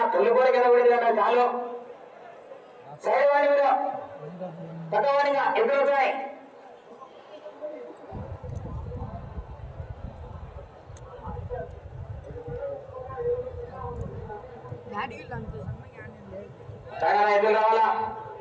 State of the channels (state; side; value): identical; both; correlation 1.00